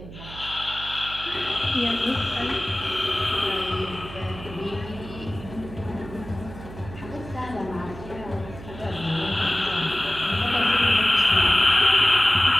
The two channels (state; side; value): noise; right; hum, 14 dB below the sound